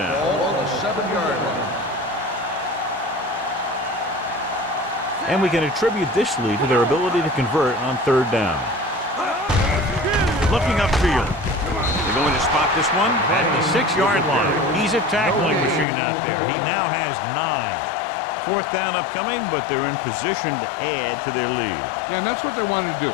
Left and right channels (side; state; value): right; drops out; at 15.9 s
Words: Ball on the 7-yard line. And we can attribute this lead to their ability to convert on third down. Looking upfield. They're going to spot this one at the 6-yard line. He's a tackling machine out there. He now has 9. Fourth down upcoming, but they're in position to add to their lead. Yeah, and that's what they wanted to do.